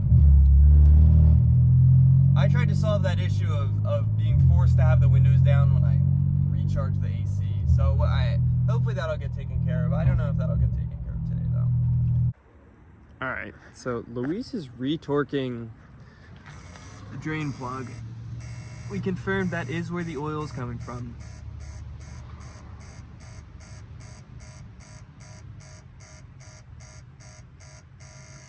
I tried to solve that issue of being forced to have the windows down when I recharge the AC. So hopefully that'll get taken care of. I don't know if that'll get taken care of today though. All right, so Luis is retorquing the drain plug. We confirmed that is where the oil is coming from.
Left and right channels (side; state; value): both; identical; correlation 1.00